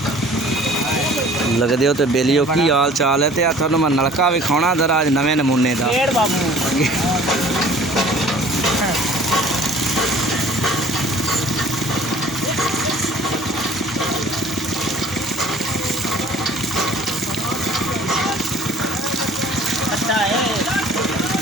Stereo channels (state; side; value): normal; both; correlation 0.50